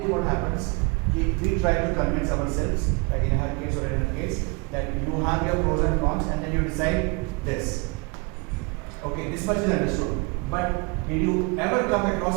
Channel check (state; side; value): quieter; left; 29.9 dB